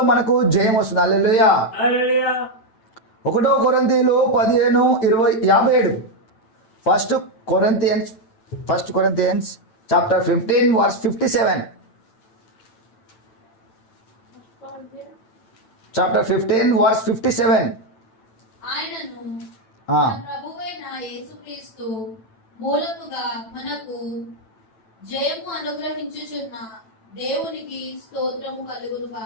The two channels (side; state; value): right; late; 9.0 ms